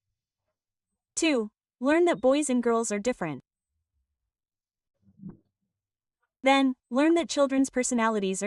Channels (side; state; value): both; identical; correlation 1.00